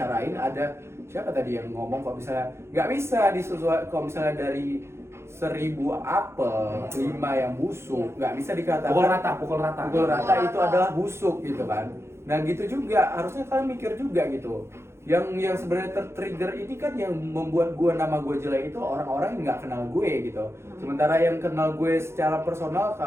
ada siapa tadi yang ngomong kok misalnya nggak bisa disesuaikan, kalau misalnya dari 1000 apel 5 yang busuk, nggak bisa dikatakan Pukul rata. pukul rata itu adalah busuk gitu kan. Nah gitu juga harusnya kalian mikir juga gitu. Yang sebenarnya tertrigger ini kan yang membuat nama gue jelek itu orang-orang yang nggak kenal gue gitu. Sementara yang kenal gue secara personal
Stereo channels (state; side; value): late; left; 0.13 ms